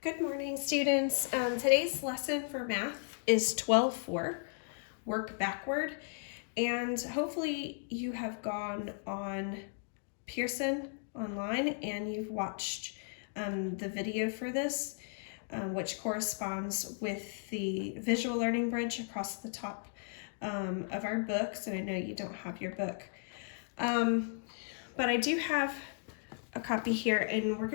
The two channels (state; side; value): silent; right; digital silence